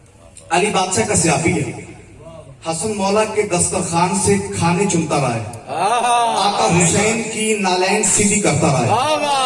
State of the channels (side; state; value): both; identical; correlation 1.00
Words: अली बादशाह का सियाबी है, हसन मौला के दस्तरखान से खाने चुनता रहा है, आका हुसैन की नालैन सीधी करता रहा है,